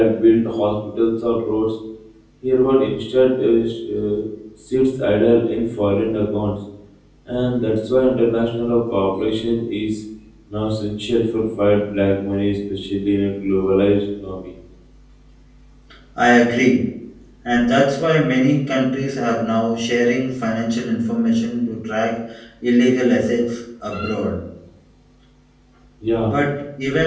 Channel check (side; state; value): both; identical; correlation 1.00